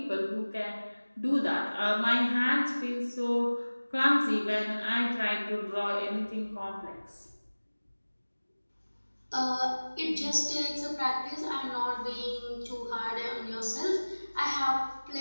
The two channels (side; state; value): both; inverted; correlation -1.00